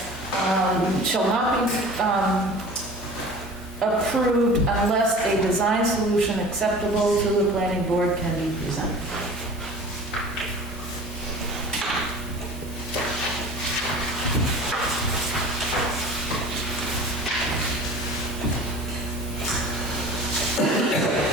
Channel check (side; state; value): both; normal; correlation 0.41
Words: Shall not be approved unless a design solution acceptable to the planning board can be presented.